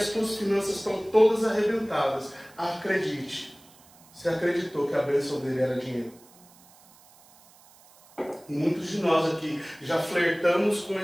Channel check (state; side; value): noise; right; hiss, 26 dB below the sound